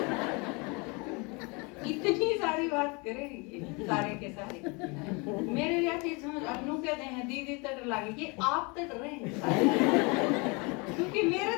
इतनी सारी बात करें ये सारे के सारे मेरे जाते समझ अनु कहते हैं दीदी तट लागे कि आप तट रहे हैं सारे। क्योंकि मेरे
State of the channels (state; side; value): quieter; right; 29.5 dB